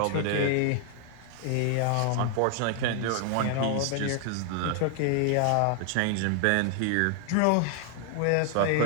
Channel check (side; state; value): both; different; correlation 0.00